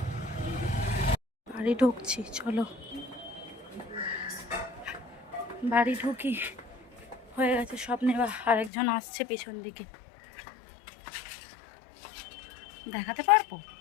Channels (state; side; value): drops out; right; at 8.7 s